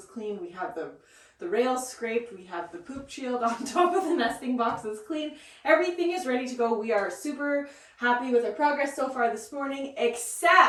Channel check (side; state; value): both; identical; correlation 1.00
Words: cleaned, we have the rails scraped, we have the poop shield on top of the nesting boxes clean. Everything is ready to go. We are super happy with our progress so far this morning,